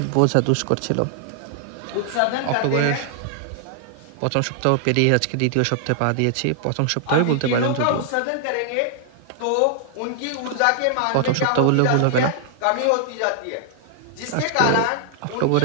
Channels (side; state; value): both; different; correlation -0.01